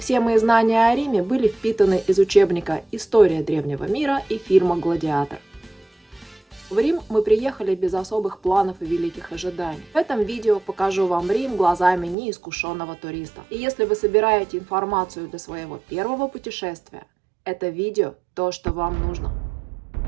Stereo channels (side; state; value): left; drops out; at 12.2 s